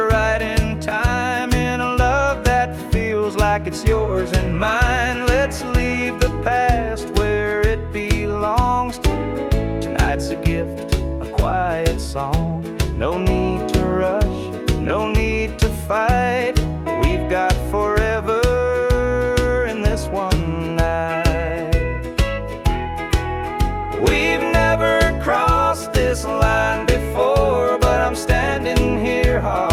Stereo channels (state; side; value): identical; both; correlation 1.00